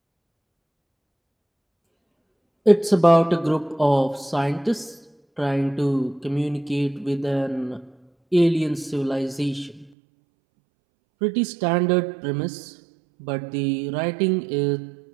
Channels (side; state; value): left; drops out; at 9.9 s